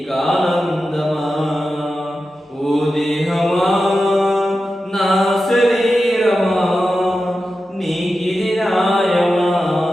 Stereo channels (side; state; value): both; normal; correlation 0.91